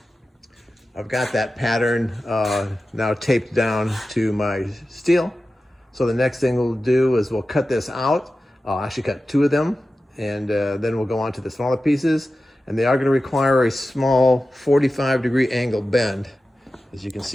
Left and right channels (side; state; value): both; normal; correlation 0.94